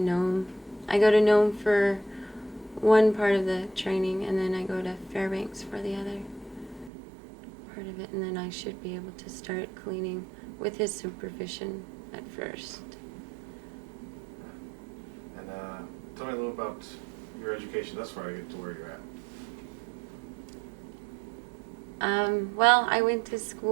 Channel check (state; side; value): drops out; left; at 6.9 s